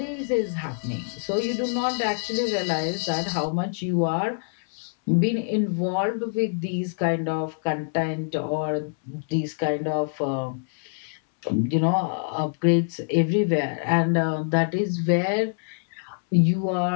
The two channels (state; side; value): silent; right; 62 dB below the other